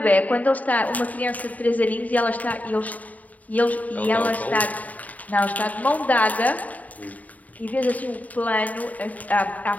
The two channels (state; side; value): late; right; 0.073 ms